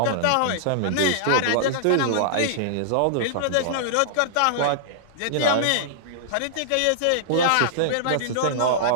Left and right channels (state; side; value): different; both; correlation -0.02